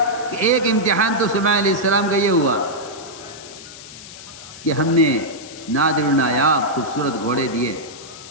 کہ ایک امتحان تو سلیمان علیہ السلام کا یہ ہوا کہ ہم نے نادر و نایاب خوبصورت گھوڑے دیے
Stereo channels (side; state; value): left; noise; hiss, 16 dB below the sound